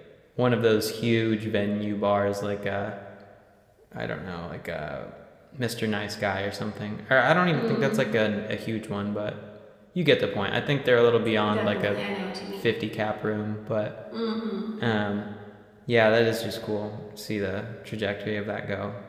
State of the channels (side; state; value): both; identical; correlation 1.00